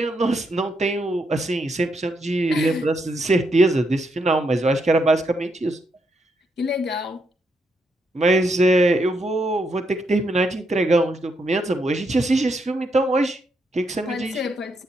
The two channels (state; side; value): normal; both; correlation 0.78